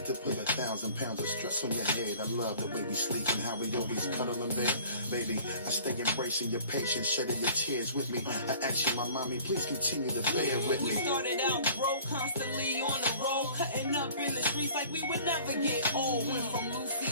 to put 1,000 pounds of stress on your head. I love the way we sleep and how we always cuddle in bed. Baby, I stay embracing your patience, shedding your tears with me. I ask you, my mommy, please continue to bear with me. We started out broke, constantly on the road, cutting up in the streets like we would never get old. Went from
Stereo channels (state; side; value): inverted; both; correlation -0.48